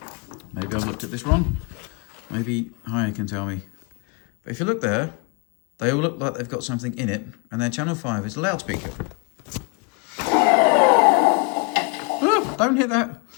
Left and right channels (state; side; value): quieter; right; 32.3 dB